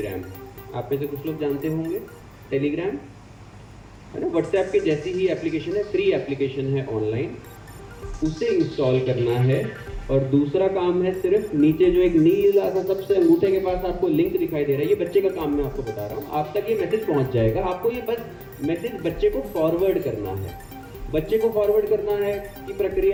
आप में से कुछ लोग जानते होंगे टेलीग्राम, है ना। व्हाट्सएप के जैसी ही एप्लीकेशन है, फ्री एप्लीकेशन है ऑनलाइन, उसे इंस्टॉल करना है और दूसरा काम है सिर्फ नीचे जो एक नीला सा सबसे अंगूठे के पास आपको लिंक दिखाई दे रहा है, ये बच्चे का काम मैं आपको बता रहा हूँ। आप तक ये मैसेज पहुँच जाएगा, आपको ये बस मैसेज बच्चे को फॉरवर्ड करना है। बच्चे को फॉरवर्ड करना है कि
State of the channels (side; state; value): both; identical; correlation 1.00